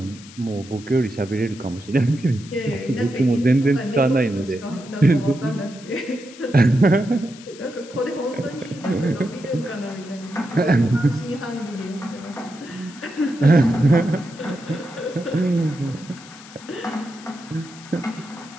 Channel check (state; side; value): noise; left; hiss, 19 dB below the sound